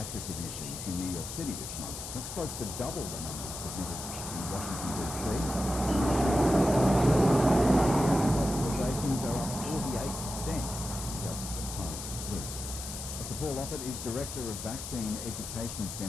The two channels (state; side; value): noise; left; hiss, 8 dB below the sound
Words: admissions in New York City this month. That's close to double the numbers submitted in Washington, D.C. Hospitalizations are up 48% just the past week. Dr. Paul Offit is Director of Vaccine Education